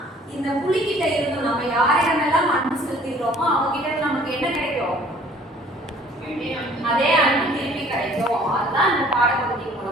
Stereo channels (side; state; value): both; normal; correlation 0.54